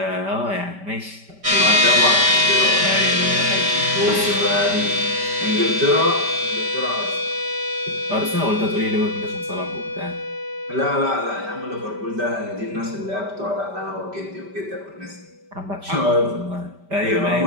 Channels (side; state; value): left; late; 5.1 ms